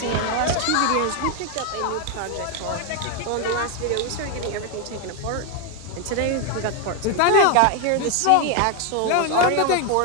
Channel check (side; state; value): both; different; correlation 0.01